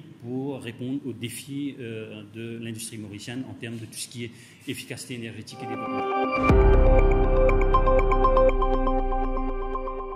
pour répondre aux défis de l'industrie mauricienne en termes de tout ce qui est efficacité énergétique et développement.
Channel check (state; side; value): identical; both; correlation 1.00